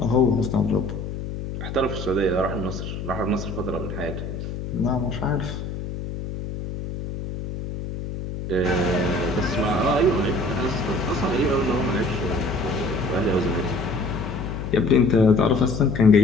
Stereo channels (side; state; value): left; noise; hum, 7 dB below the sound